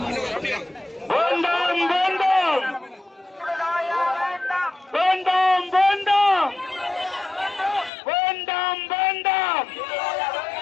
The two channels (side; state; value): right; drops out; at 7.9 s